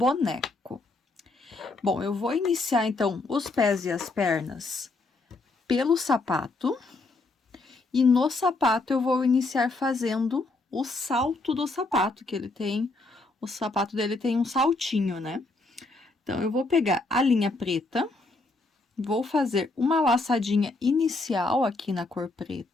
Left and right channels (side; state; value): right; quieter; 3.2 dB